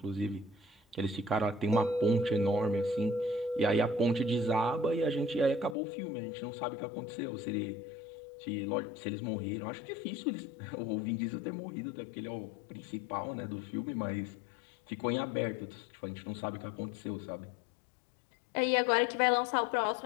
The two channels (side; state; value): right; drops out; at 5.8 s